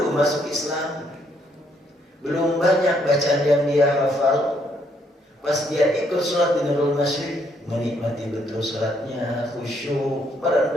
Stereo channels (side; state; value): both; normal; correlation 0.71